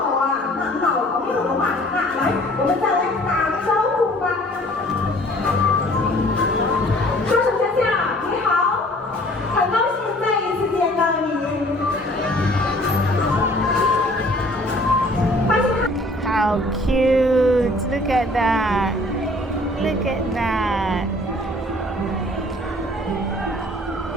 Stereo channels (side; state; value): both; normal; correlation 0.54